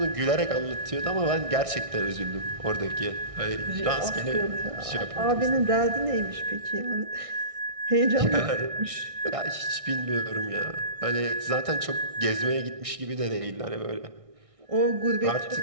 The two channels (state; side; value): late; left; 1.6 ms